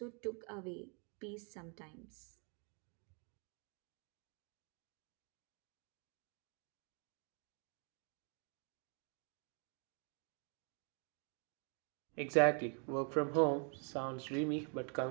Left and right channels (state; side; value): quieter; left; 38.5 dB